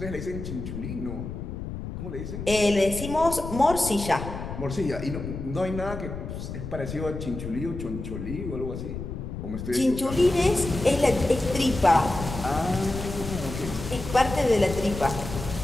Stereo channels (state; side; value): noise; left; rumble, 7 dB below the sound